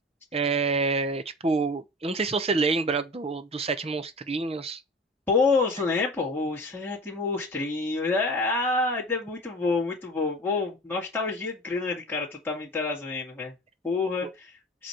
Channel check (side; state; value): both; normal; correlation 0.36